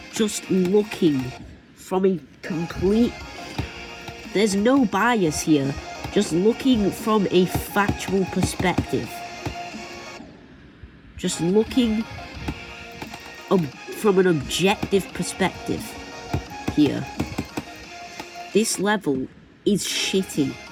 Just looking from a complete... There's no bias here. Just looking from a factual perspective. Just looking from an objective perspective here. This level is shitty.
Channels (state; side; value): identical; both; correlation 1.00